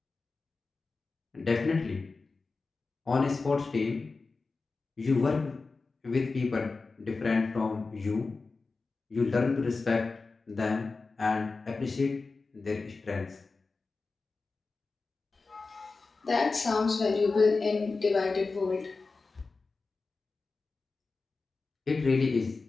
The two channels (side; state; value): right; quieter; 4.0 dB